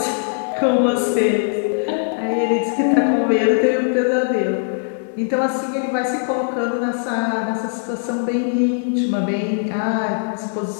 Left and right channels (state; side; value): silent; right; digital silence